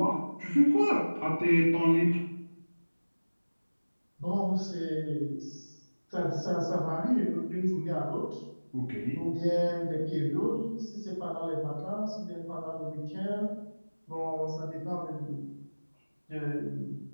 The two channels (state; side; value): inverted; both; correlation -1.00